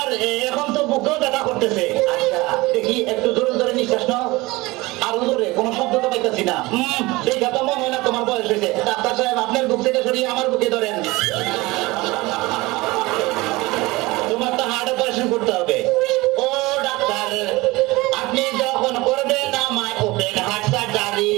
এখন তো বুকেও ব্যথা করতেছে আচ্ছা দেখি একটু জোরে জোরে নিঃশ্বাস নাও আরো জোরে কোনো শব্দ তো পাইতেছি না দেখা তো মনে হয় না তোমার বয়স হয়েছে ডাক্তার সাহেব আপনার বুক থেকে সরিয়ে আমার বুকে ধরেন তোমার তো হার্ট অপারেশন করতে হবে ও ডাক্তার আপনি যখন করবেন আমায় ওপেন হার্ট সার্জারি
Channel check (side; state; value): left; quieter; 21.5 dB